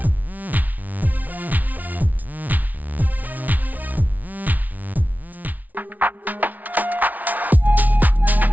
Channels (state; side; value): late; left; 0.077 ms